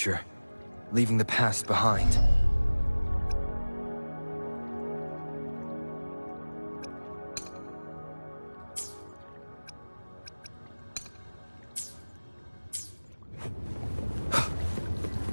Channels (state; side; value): inverted; both; correlation -1.00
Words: leaving the past behind.